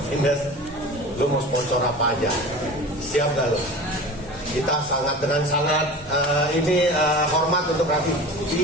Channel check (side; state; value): both; normal; correlation 0.36